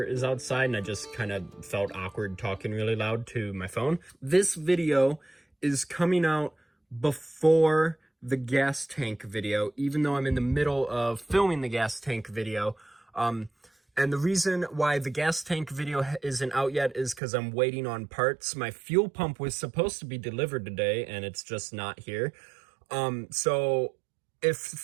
is outside and I just kind of felt awkward talking really loud to my phone. This video is coming out before the gas tank video, even though I'm in the middle of filming the gas tank video. And the reason why the gas tank video isn't out yet is because I'm waiting on parts. My fuel pump was supposed to be delivered today and it's just not here. So if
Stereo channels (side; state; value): left; drops out; at 17.2 s